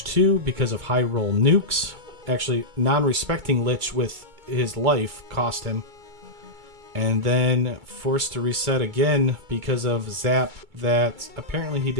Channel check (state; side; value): late; left; 2.3 ms